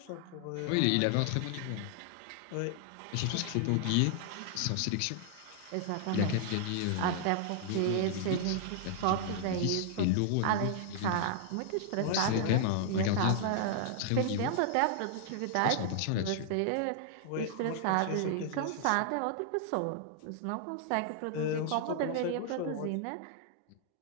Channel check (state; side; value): different; both; correlation 0.00